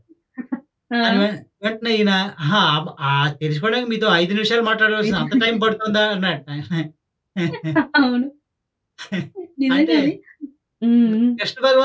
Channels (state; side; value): identical; both; correlation 1.00